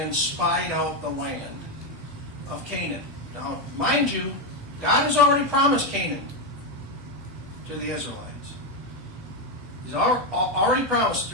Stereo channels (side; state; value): both; normal; correlation 0.08